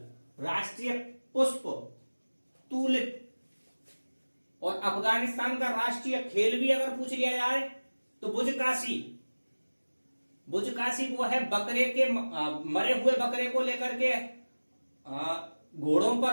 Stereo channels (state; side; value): inverted; both; correlation -1.00